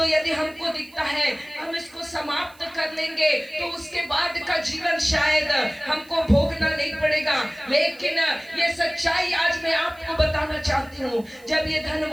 यदि हमको दिखता है हम इसको समाप्त कर लेंगे तो उसके बाद का जीवन शायद हमको भोगना नहीं पड़ेगा। लेकिन ये सच्चाई आज मैं आपको बताना चाहती हूँ। जब ये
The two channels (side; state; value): right; noise; hiss, 26 dB below the sound